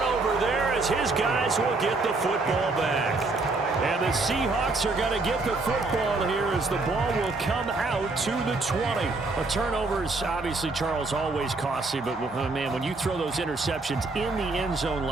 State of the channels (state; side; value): quieter; left; 3.5 dB